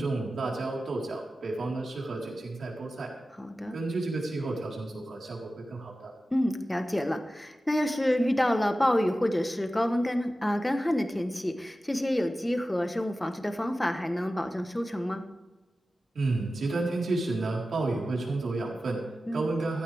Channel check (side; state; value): both; normal; correlation 0.94